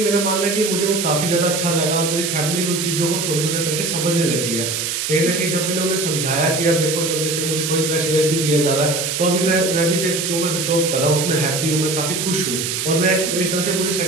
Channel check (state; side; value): noise; right; hiss, 2 dB below the sound